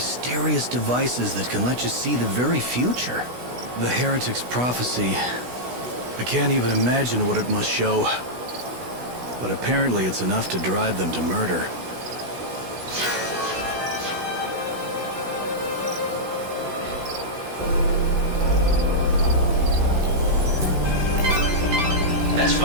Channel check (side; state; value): left; late; 16 ms